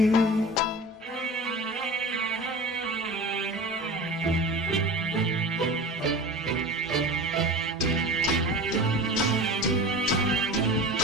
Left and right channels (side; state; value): both; normal; correlation 0.34